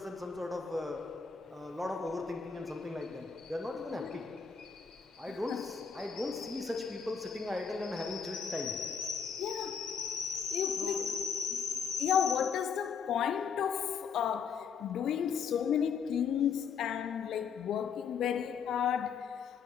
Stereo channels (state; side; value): quieter; right; 6.4 dB